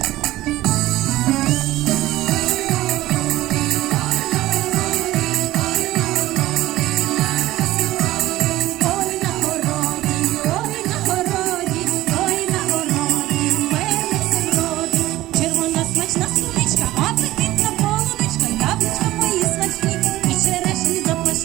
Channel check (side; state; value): left; quieter; 16.3 dB